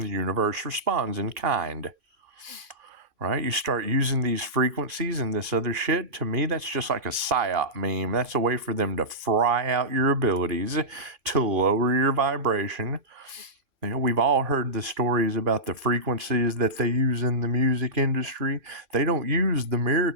the universe responds in kind. Right? You start using these frequencies and this other shit. To me, that's just like a psyop meme. That's a way for them to fry out your abilities, to lower your vibration. You know, we've all heard the stories about the frequencies that they use in the music industry. They don't use the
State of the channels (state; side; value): late; left; 3.5 ms